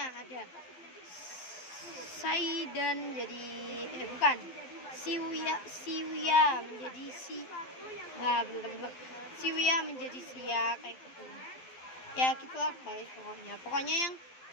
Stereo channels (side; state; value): right; late; 12 ms